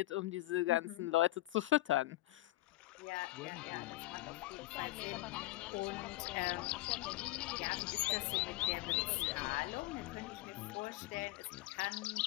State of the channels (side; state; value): right; quieter; 17.4 dB